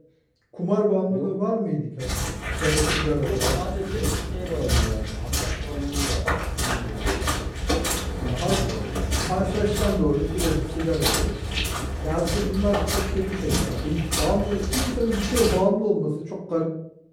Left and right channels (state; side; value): identical; both; correlation 1.00